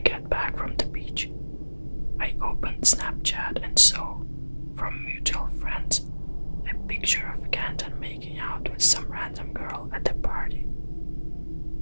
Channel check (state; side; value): inverted; both; correlation -1.00